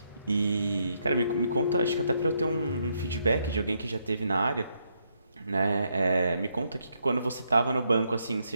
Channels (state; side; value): inverted; both; correlation -0.77